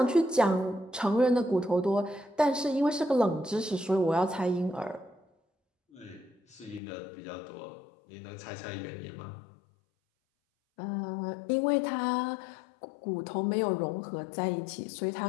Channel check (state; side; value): drops out; right; at 6.8 s